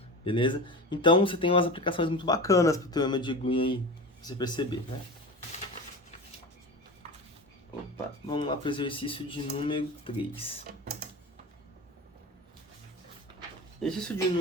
Beleza? Então, você tem umas aplicações muito bacanas pro teorema de Green aí, pra você perceber, né? Opa, vamos lá pro exercício de número 3. Exercício de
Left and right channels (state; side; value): normal; both; correlation 0.28